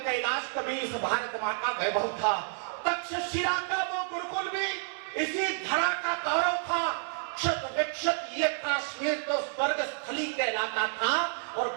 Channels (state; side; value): silent; left; digital silence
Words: कैलाश कभी इस भारत माँ का वैभव था, तक्षशिला का वो गुरुकुल भी इसी धरा का गौरव था, क्षत विक्षत ये काश्मीर तो स्वर्ग स्थली कहलाता था और